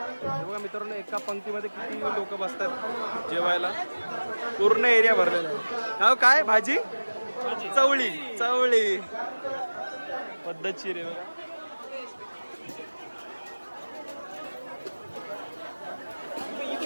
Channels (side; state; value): both; inverted; correlation -1.00